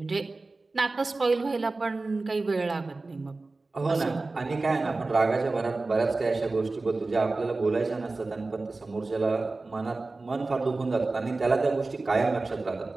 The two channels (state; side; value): quieter; left; 3.4 dB